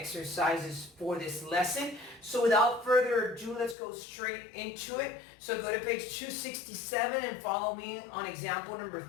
for this lesson. So without further ado, let's go straight into it. So go to page 267 and follow me on example number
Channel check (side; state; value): right; drops out; at 3.8 s